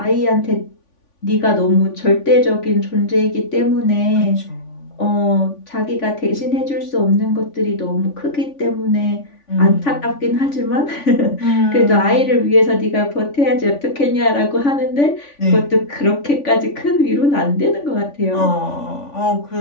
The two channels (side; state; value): right; late; 3.5 ms